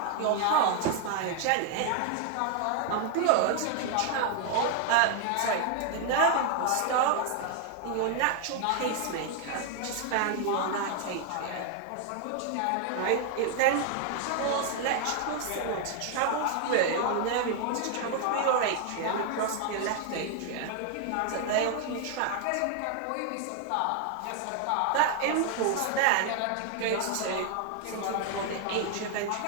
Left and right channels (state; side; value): different; both; correlation 0.00